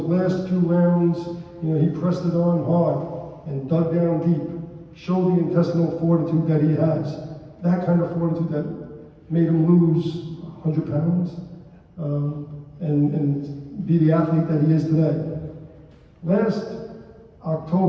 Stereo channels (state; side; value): identical; both; correlation 1.00